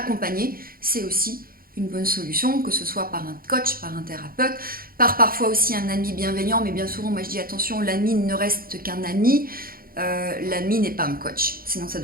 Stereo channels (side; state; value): left; late; 0.42 ms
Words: c'est aussi une bonne solution, que ce soit par un coach, par un thérapeute, par parfois aussi un ami bienveillant, mais bien souvent moi je dis attention, l'ami ne reste qu'un ami. L'ami n'est pas un coach, sinon ça